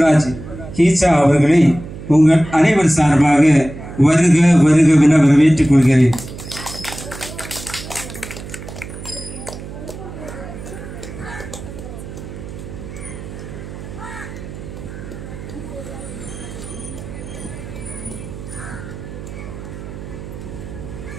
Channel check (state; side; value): noise; right; hum, 12 dB below the sound